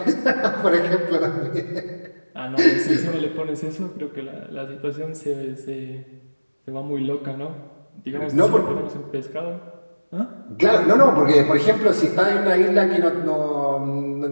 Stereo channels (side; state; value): both; inverted; correlation -1.00